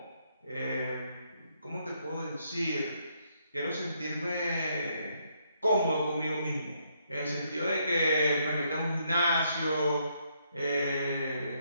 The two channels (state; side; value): inverted; both; correlation -0.74